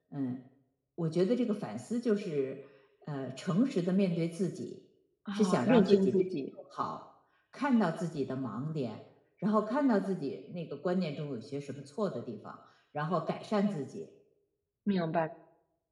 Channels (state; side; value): identical; both; correlation 1.00